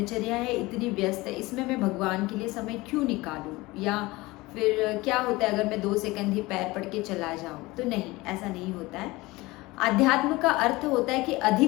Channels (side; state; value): right; quieter; 21.0 dB